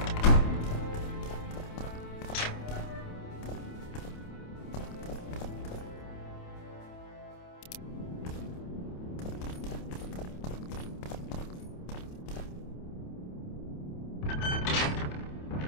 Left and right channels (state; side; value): late; right; 28 ms